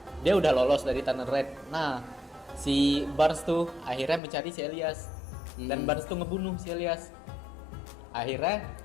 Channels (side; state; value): right; drops out; at 4.2 s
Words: dia udah lolos dari Tunnel Red. Nah, si Barnes tuh akhirnya mencari si Elias. Dan Barnes tuh ngebunuh si Elias. Akhirnya